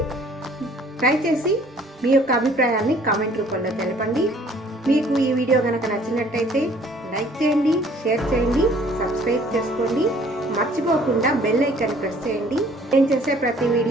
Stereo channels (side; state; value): both; normal; correlation 0.56